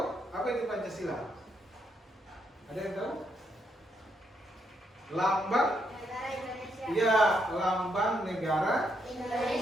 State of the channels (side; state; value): both; normal; correlation 0.77